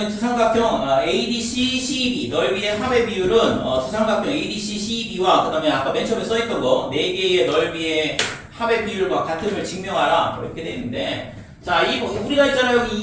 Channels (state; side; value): identical; both; correlation 1.00